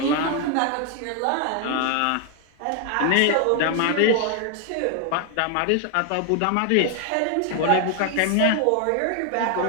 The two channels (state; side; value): different; both; correlation 0.00